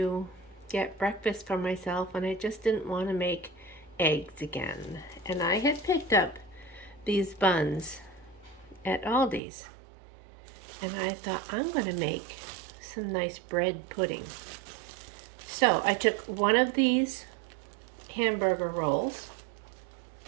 get breakfast for myself and I just didn't want to make eggs again. And I had picked up these buns at Aldi's. And I thought I'm going to make some nice bread pudding. So I took one of these hamburger rolls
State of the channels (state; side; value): drops out; left; at 9.4 s